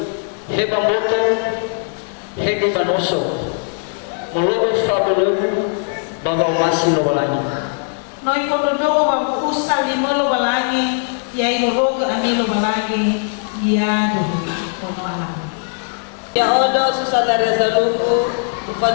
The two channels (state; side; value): silent; right; 56 dB below the other